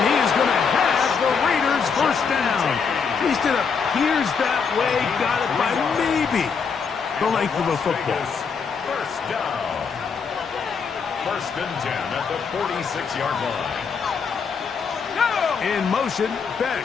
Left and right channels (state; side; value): quieter; right; 5.9 dB